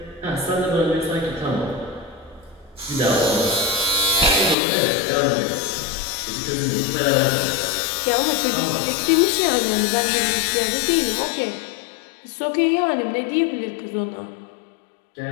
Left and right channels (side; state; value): right; drops out; at 4.5 s